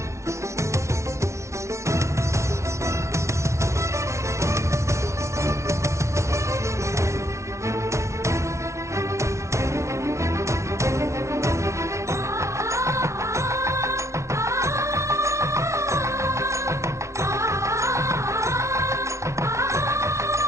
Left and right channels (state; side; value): late; left; 0.14 ms